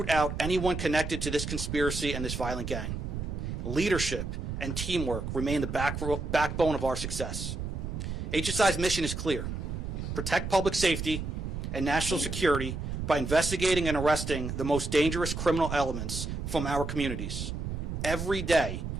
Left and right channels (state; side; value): noise; right; rumble, 4 dB below the sound